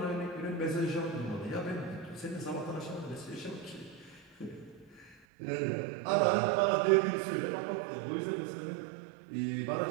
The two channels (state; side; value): drops out; left; at 5.2 s